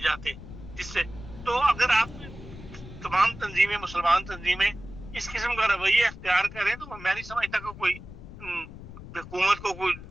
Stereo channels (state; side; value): noise; left; rumble, 14 dB below the sound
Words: جس سے تو اگر آپ تمام تنظیمیں, مسلمان تنظیمیں اس قسم کا رویہ اختیار کریں تو میں نہیں سمجھتا کہ کوئی حکومت کو کوئی